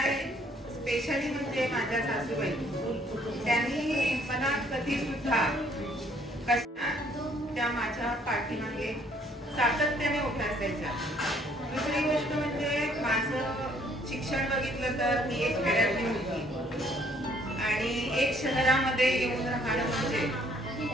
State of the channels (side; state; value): both; normal; correlation 0.63